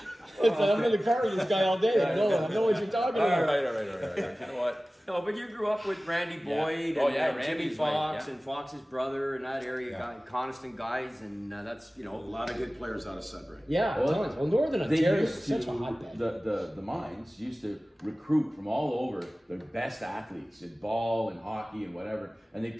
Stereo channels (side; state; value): both; normal; correlation 0.97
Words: I'm in the car with this guy all day. I know what you're talking about. All right. You know what? No, but you grew up with Randy Boyd and Jimmy Fox and Fox's brother in that area, Coniston guys, and that's, you know, A lot of good players out of Sudbury. Yeah, tons. Well, Northern Ontario is such a hotbed. The mines used to recruit from all over the best athletes in ball and hockey and whatever, and they